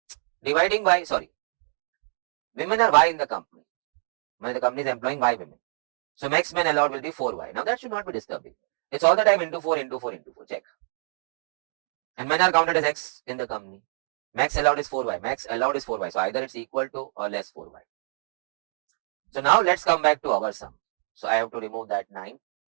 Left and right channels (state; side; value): silent; left; digital silence